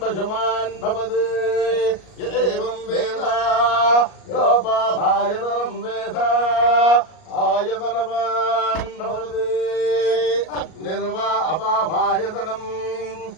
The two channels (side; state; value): right; late; 38 ms